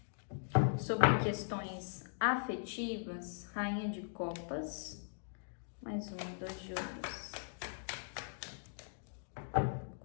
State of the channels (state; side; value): silent; right; digital silence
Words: sobre questões afetivas, rainha de copas, mais 2 de ouros.